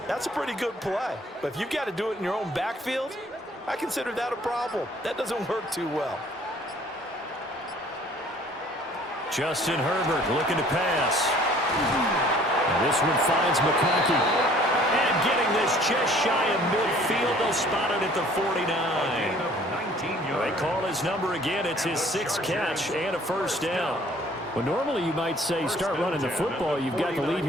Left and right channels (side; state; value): both; normal; correlation 0.55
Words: that's a pretty good play. But if you've got to do it in your own backfield, I consider that a problem. That doesn't work too well. Justin Herbert looking to pass. And this one finds McConkey. And getting this just shy of midfield. They'll spot it at the 49. They call his number again. It's his 6th catch and a first down. Well, normally you might say start running the football. You've got the lead